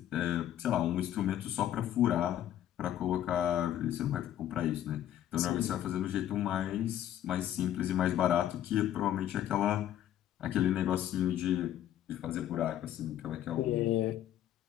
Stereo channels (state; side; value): quieter; right; 11.6 dB